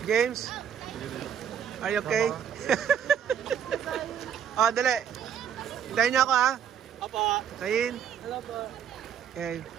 James? Are you okay? Oh, dali. Hintayin niyo ako, ha? Apa? Kayin? Hello po. Okay.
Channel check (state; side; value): quieter; left; 8.5 dB